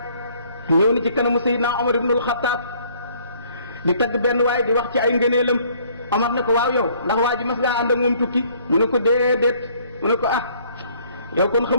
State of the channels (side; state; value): both; inverted; correlation -0.61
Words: ñëw ni ci kanamu Seydina Omar ibnul Xattaab di tagg benn waay di wax ci ay ngëneelam Omar ne ko waaw yow ndax waa ji mas ngaa ànd ak moom tukki mu ne ko déedéet mu ne ko ah yow kon